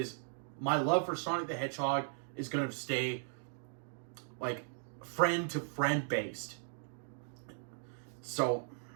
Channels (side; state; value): left; silent; digital silence